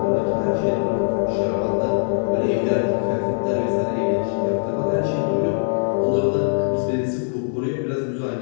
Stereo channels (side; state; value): right; silent; 64 dB below the other